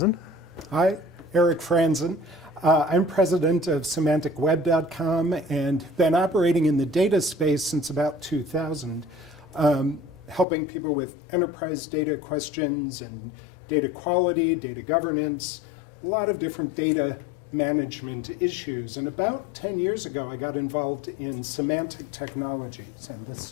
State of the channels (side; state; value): right; drops out; at 10.5 s